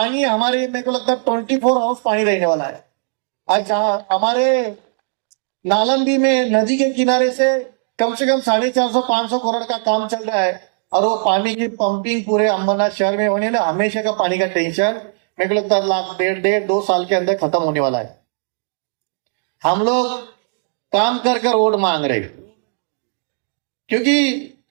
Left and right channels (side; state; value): left; silent; digital silence